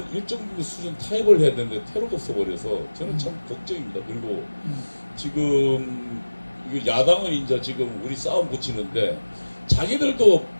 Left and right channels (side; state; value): both; inverted; correlation -1.00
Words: 일정 수준 타협을 해야 되는데 퇴로가 없어 버려서 저는 참 걱정입니다. 그리고 지금 야당은 이제 지금 우리 싸움 붙이는데 자기들도